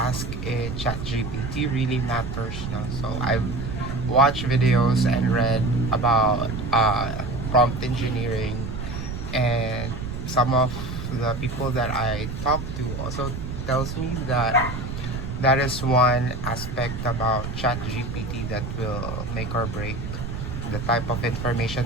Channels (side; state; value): right; noise; rumble, 6 dB below the sound